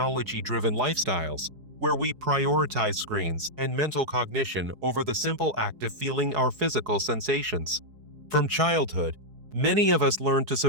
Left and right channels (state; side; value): late; left; 4.7 ms